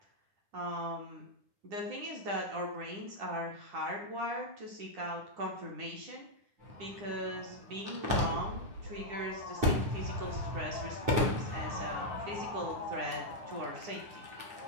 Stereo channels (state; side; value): late; left; 9.9 ms